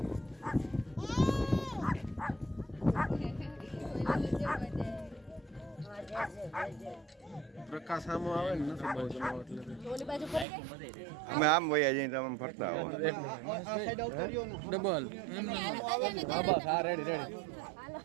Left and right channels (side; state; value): left; drops out; at 10.5 s